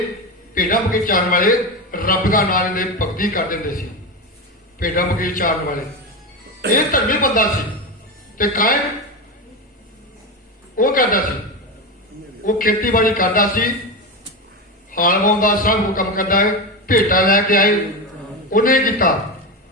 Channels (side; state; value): both; normal; correlation 0.17